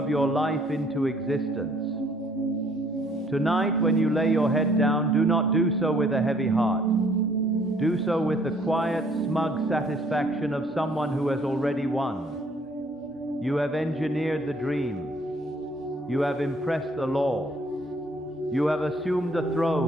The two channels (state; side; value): normal; both; correlation 0.62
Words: your life into existence. Tonight, when you lay your head down, do not do so with a heavy heart. Do so with the quiet, smug satisfaction of someone who has already won. You have engineered the dream. You have impressed the law. You have assumed the